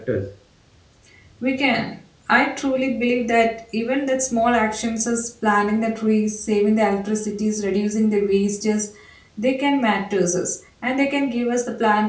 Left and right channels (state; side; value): identical; both; correlation 1.00